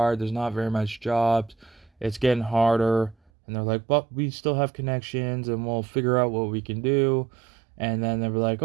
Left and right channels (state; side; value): drops out; left; at 3.2 s